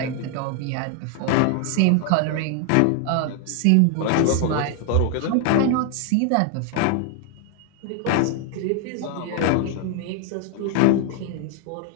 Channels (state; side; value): different; both; correlation 0.00